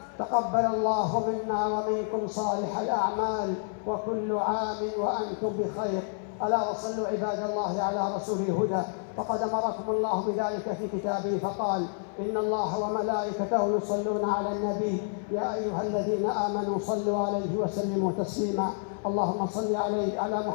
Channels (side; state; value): right; silent; 57 dB below the other